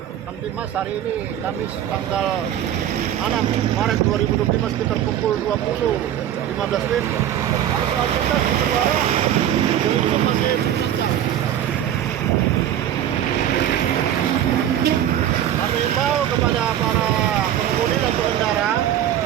Kamtibmas hari ini Kamis tanggal 6 Maret 2025 sekitar pukul 20.15 WIB. Arus lalu lintas di Bendara belum masih lancar. Kami himbau kepada para pengemudi dan pengendara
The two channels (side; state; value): left; quieter; 10.9 dB